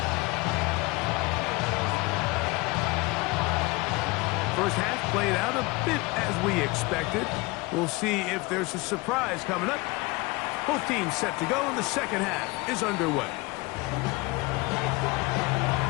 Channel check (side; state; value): right; quieter; 23.8 dB